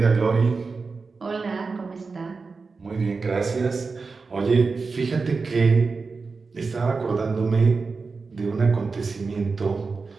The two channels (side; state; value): left; quieter; 4.4 dB